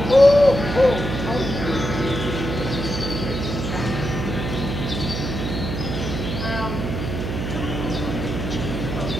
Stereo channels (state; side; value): noise; right; hum, 4 dB below the sound